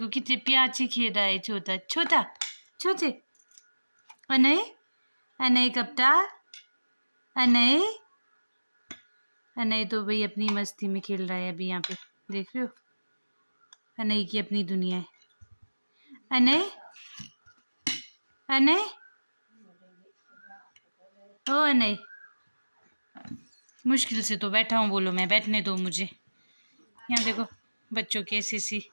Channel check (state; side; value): inverted; both; correlation -1.00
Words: कितने प्याची खेल रहा है, छोटा छोटा छोटे। अनय अनय कप्ता, अनय अनय तो भाई अपनी मस्ती में खेल रहा है अभी। यहाँ पे देख रहे हो, अनय की अपनी दुनिया है। अनय अनय ओ अनय, मुश्किल से तो बैठा हूँ, बोलो मैं बैठने दो मुझे। यहाँ देखो बच्चों की ऐसी सी